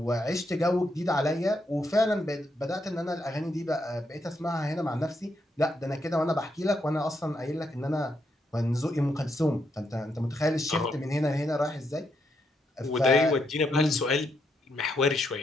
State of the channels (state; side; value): normal; both; correlation 0.79